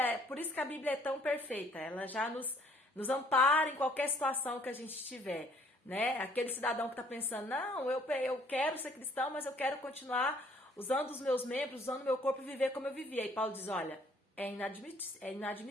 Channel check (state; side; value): normal; both; correlation 0.60